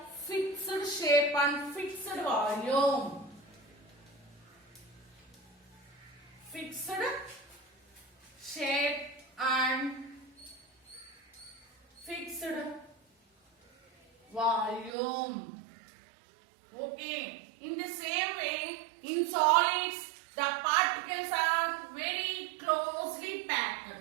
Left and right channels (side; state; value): left; drops out; at 14.9 s